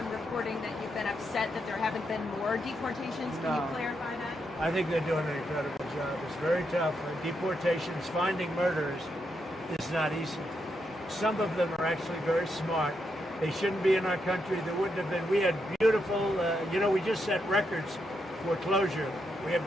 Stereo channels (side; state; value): both; normal; correlation 0.81